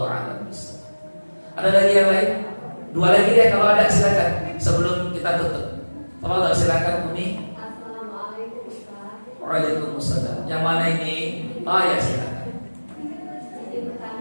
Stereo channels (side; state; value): both; inverted; correlation -1.00